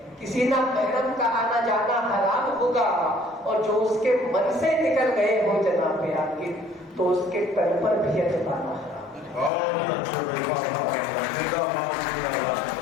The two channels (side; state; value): right; drops out; at 9.5 s